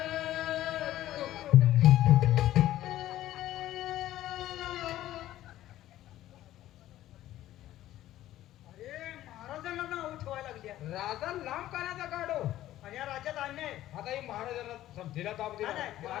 राजा लांब कानाचा काढो आणि या राज्यात अन्याय. आता ही महाराजांना समजेला ताप दिला.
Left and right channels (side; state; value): right; quieter; 13.9 dB